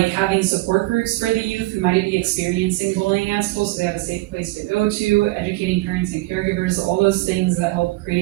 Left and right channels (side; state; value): left; quieter; 19.9 dB